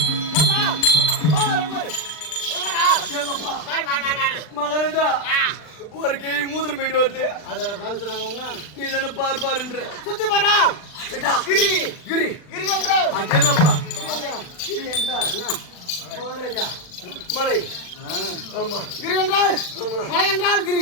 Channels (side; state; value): right; late; 39 ms